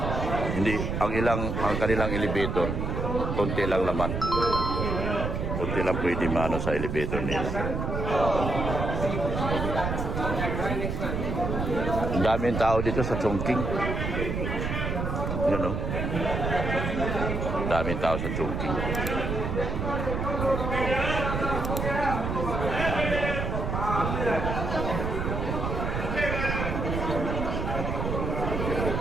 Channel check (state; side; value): noise; right; rumble, 2 dB below the sound